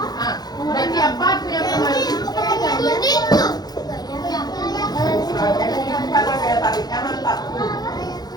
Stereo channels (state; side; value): late; right; 0.19 ms